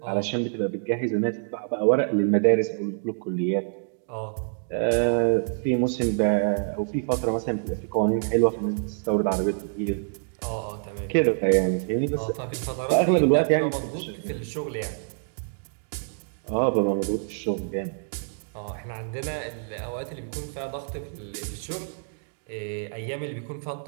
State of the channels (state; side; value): silent; left; digital silence